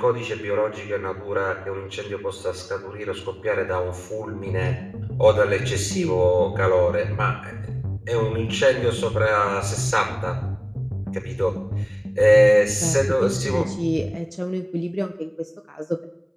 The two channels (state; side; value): identical; both; correlation 1.00